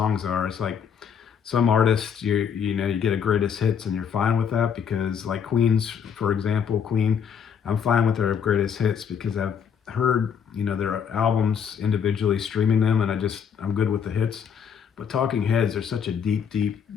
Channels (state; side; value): quieter; right; 7.4 dB